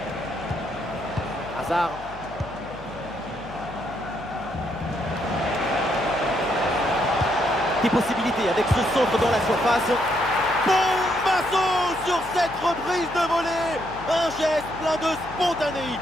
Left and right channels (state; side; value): noise; left; hum, 19 dB below the sound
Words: Hazard. Des possibilités avec ce centre dans la surface. Bombasso sur cette reprise de volée. Un geste plein de